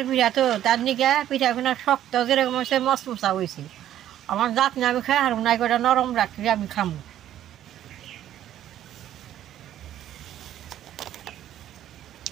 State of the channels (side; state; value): left; quieter; 11.8 dB